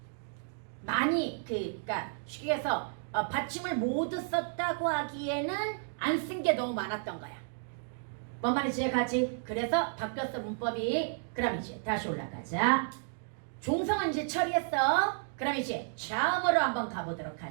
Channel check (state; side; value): silent; left; digital silence